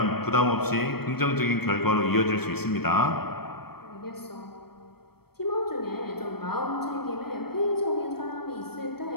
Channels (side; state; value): right; late; 0.96 ms